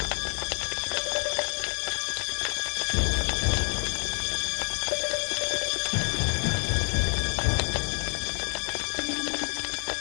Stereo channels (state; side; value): silent; right; 59 dB below the other